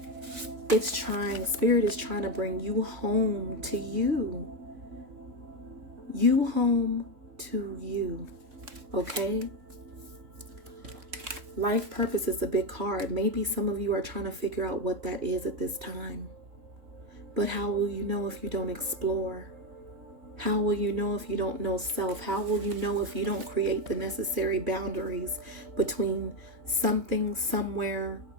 Spirit is trying to bring you home to you. You home to you. Okay? Life purpose is a big card. Maybe some of you are trying to figure out what that is at this time. But how will you know if you don't explore? How will you know if you don't know self? How will you know if you don't create the necessary boundaries between something, somewhere,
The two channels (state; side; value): late; left; 3.4 ms